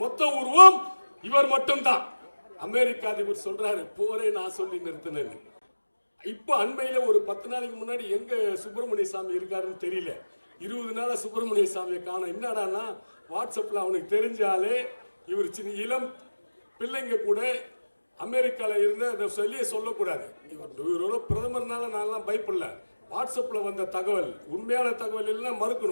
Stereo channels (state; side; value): inverted; both; correlation -1.00